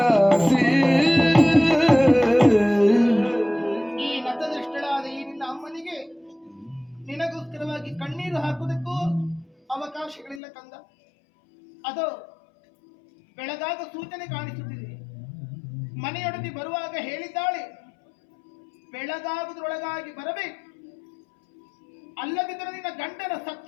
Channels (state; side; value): drops out; right; at 10.4 s